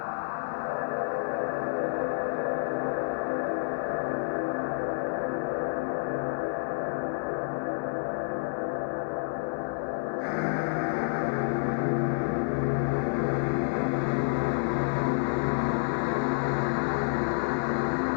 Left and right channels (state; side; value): silent; right; 58 dB below the other